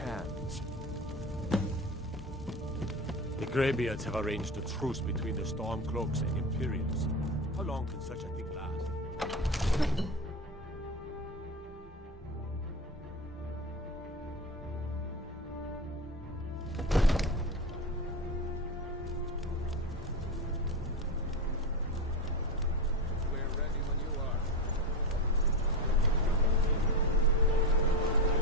The Greybeards have arranged a truce between the Stormcloaks and Imperials. How long can such a thing last?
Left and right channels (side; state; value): both; normal; correlation 0.22